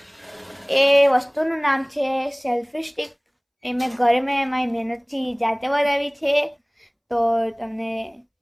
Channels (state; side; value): identical; both; correlation 1.00